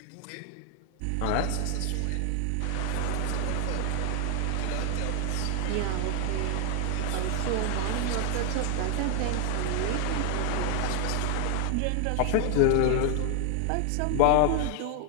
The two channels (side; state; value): both; different; correlation 0.00